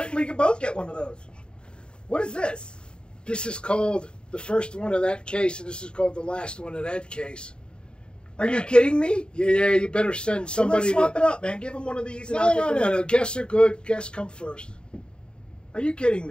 didn't we both get one of those? What is this? This is called the first one of that case, and this is called the last one of that case. Are you kidding me? Yeah, you better send somebody. Well, let's swap it up, man. Give him one of these. And No. Guests are good. Guests come first. Are you kidding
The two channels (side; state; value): right; late; 0.051 ms